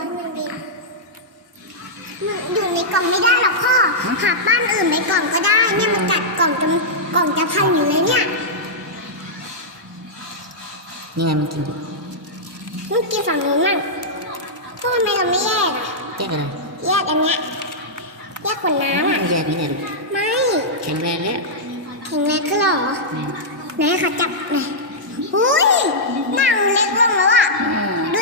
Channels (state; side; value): normal; both; correlation -0.11